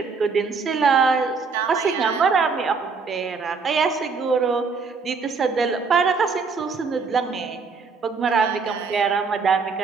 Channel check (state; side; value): quieter; left; 4.9 dB